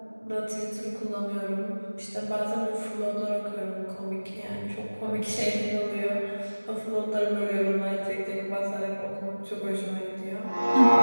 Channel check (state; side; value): inverted; both; correlation -1.00